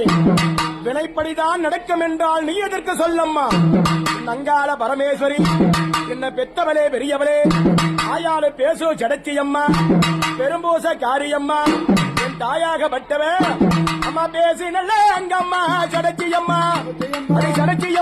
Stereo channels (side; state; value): both; identical; correlation 1.00